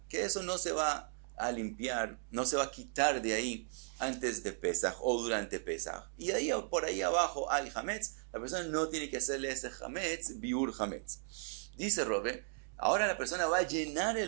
que eso no se va a limpiar, no se va a quitar de ahí antes de Pesaj o durante Pesaj. Y ahí por ahí abajo hay Hametz, la persona no tiene que hacerle ese Hametz, Biur Hametz. Dice Rove, ahora la persona va a llenar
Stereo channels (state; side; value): silent; left; 54 dB below the other